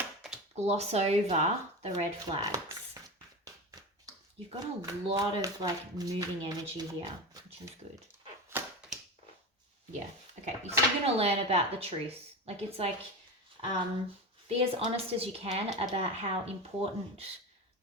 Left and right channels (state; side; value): normal; both; correlation 0.24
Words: gloss over the red flags. You've got a lot of like moving energy here, which is good. Yeah, okay, so you're going to learn about the truth. Like, it's like, be as honest as you can about how important